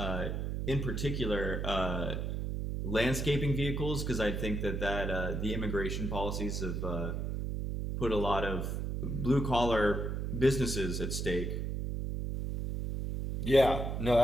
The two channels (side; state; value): right; noise; hum, 2 dB below the sound